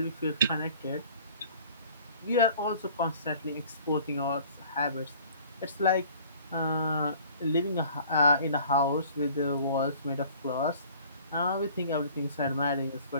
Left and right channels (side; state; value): both; inverted; correlation -0.51